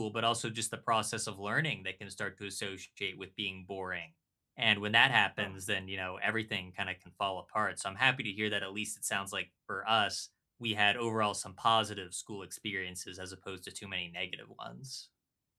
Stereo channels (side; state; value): both; identical; correlation 1.00